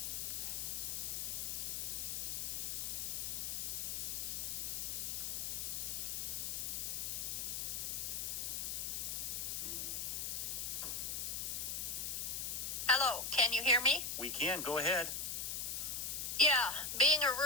Hello, can you hear me? We can. Go ahead. Yeah, being a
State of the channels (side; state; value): left; noise; hiss, 1 dB below the sound